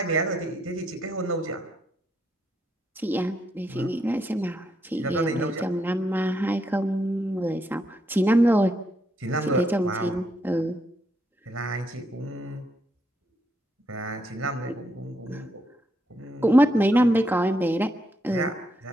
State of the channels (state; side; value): normal; both; correlation 0.78